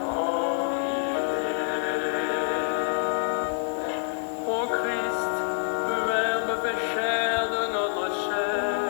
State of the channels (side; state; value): right; silent; digital silence